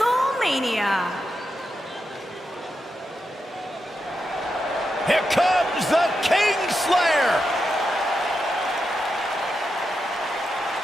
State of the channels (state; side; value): normal; both; correlation 0.87